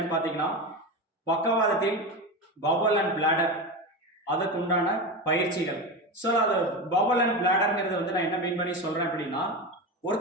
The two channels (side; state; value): both; normal; correlation 0.21